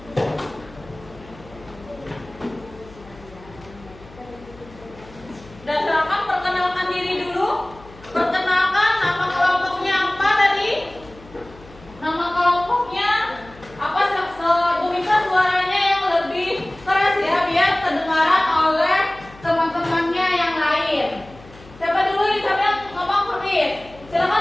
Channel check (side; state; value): left; noise; hum, 22 dB below the sound